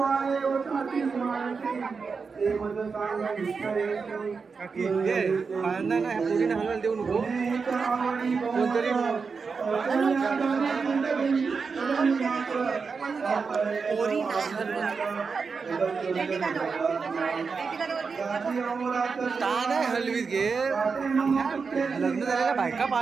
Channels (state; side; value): quieter; left; 5.1 dB